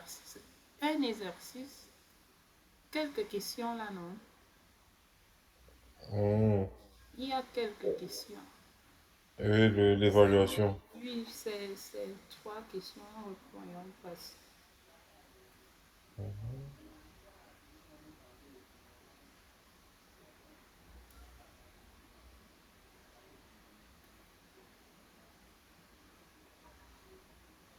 Un exercice, quelques questions là, non? Mhm. Il y a quelques questions. Et l'évaluation. Oui, c'est trois questions, voyons passer. Mhm.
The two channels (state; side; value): identical; both; correlation 1.00